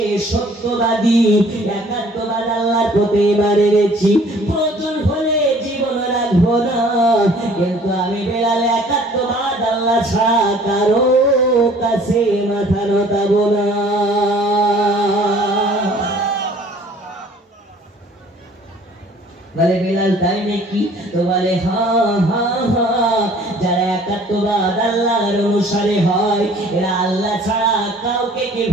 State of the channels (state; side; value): normal; both; correlation 0.54